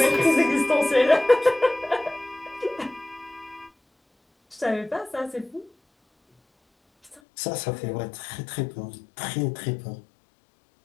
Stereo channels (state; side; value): drops out; right; at 7.2 s